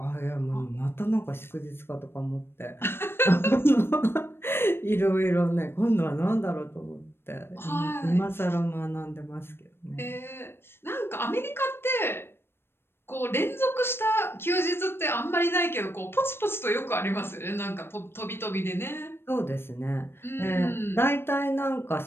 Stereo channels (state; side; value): late; right; 0.11 ms